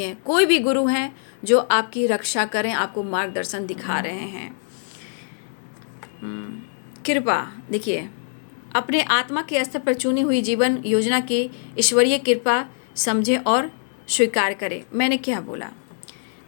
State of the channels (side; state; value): right; silent; digital silence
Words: कोई भी गुरु हैं जो आपकी रक्षा करें, आपको मार्गदर्शन दिखा रहे हैं। कृपा, देखिए, अपने आत्मा के स्तर पर चुनी हुई जीवन योजना की ईश्वरीय कृपा समझें और स्वीकार करें। मैंने क्या बोला,